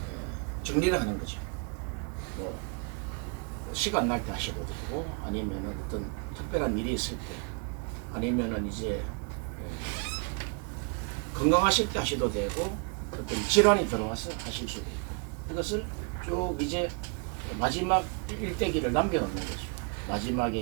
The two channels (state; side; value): quieter; left; 37.6 dB